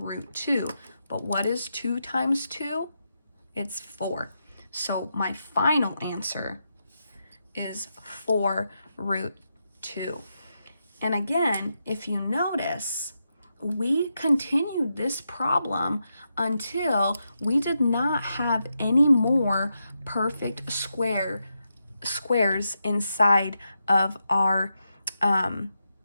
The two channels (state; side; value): inverted; both; correlation -0.85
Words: 2. But what is 2 times 2? It's 4. So my final answer is 4 root 2. And again, if you notice, we continued this problem until we did not have any more perfect squares inside of our